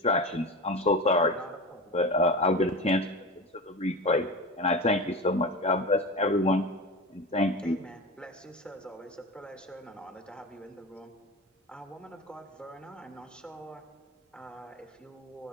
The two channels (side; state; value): both; normal; correlation 0.27